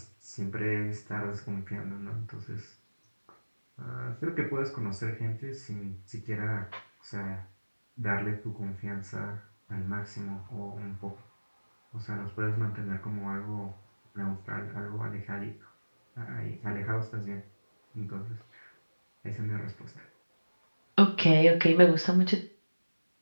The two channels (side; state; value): both; inverted; correlation -1.00